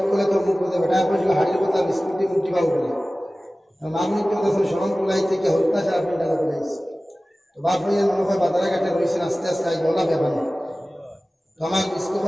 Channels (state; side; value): normal; both; correlation 0.97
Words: করে তো মুখ করে বেটা পড়ছিল হাড়ির কথা বিস্কুটি মুটি পাও করে মা বলিতে দেখছেন সরম কুলাই থেকে হরতা ছাড়া আপনি টাকা কুলাইছে তো বাপিয়ান মনে হয় বাজারে ঘাটে রয়েছেন আস্তে আস্তে আই গলা ব্যাপার তো আমার